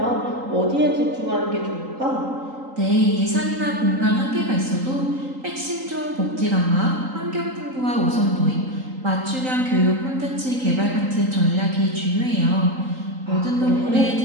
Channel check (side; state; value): left; late; 3.8 ms